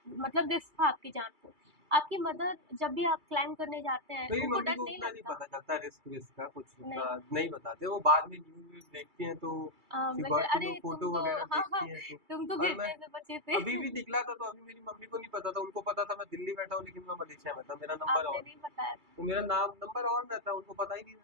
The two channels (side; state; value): left; late; 2.3 ms